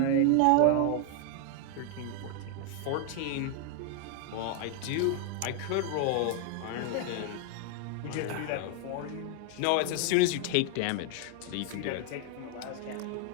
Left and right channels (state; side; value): different; both; correlation 0.00